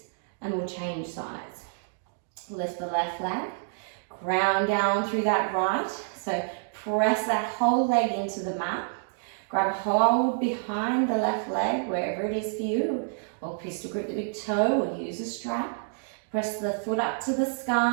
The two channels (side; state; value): left; silent; digital silence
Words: and we'll change sides. Lift the left leg, ground down through that right, so press that whole leg into the mat. Grab a hold behind the left leg, wherever it is for you, or pistol grip the big toe, or use a strap. Press the foot up to the